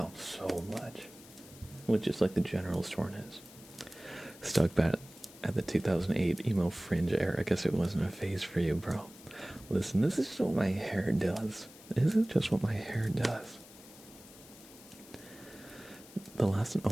so much with just like the general soreness. Stuck back at the 2008 emo fringe era. I guess it wasn't a phase for you, bro. Listen, this is just what my hair does. This is just what my hair does. The last and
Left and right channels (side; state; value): left; noise; hiss, 20 dB below the sound